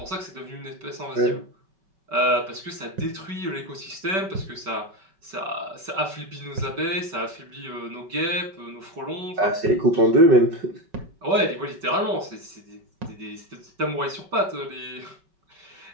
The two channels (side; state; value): left; late; 5.2 ms